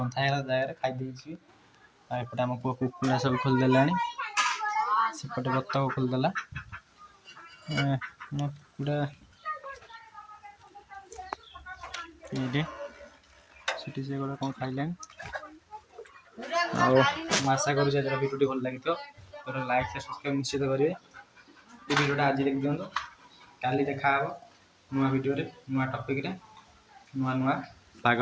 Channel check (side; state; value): both; identical; correlation 1.00